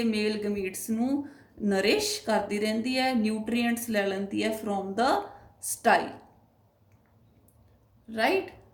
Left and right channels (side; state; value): both; identical; correlation 1.00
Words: ਮੇਲ ਗਮੀਟਸ ਨੂੰ ਨਰਿਸ਼ ਕਰਦੀ ਰਹਿੰਦੀ ਹੈ, ਨਿਊਟਰੀਐਂਟਸ ਲੈ ਲੈਂਦੀ ਹੈ from the style, right.